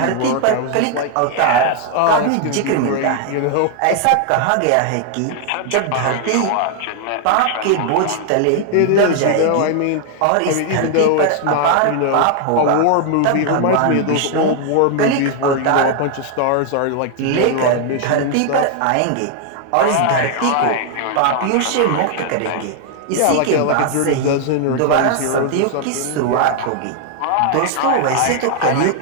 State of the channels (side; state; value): both; different; correlation 0.00